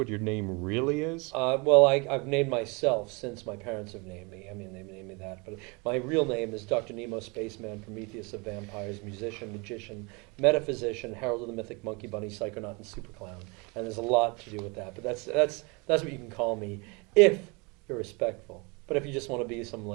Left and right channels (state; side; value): quieter; left; 29.2 dB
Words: your name really is. Well, I've named myself since my parents have named me. I mean, they named me that, but my real name is Dr. Nemo Spaceman, Prometheus of Vampires, musician, magician, metaphysician, herald of the mythic monkey bunny, psychonaut, and super clown. And there's a lot to do with that. But that's what you can call me if you're respectful. But if you just want to be some